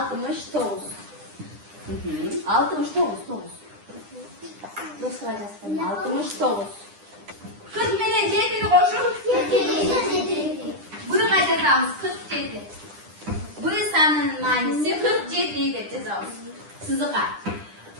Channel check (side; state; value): left; late; 9.9 ms